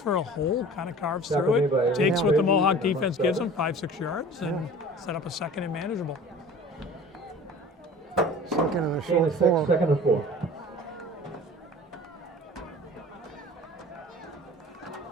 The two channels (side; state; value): both; normal; correlation 0.42